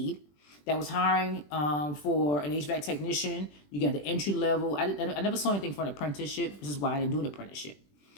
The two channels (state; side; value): late; right; 20 ms